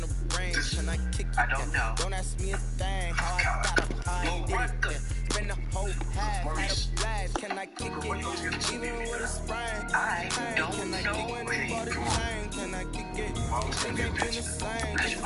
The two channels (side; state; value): both; identical; correlation 1.00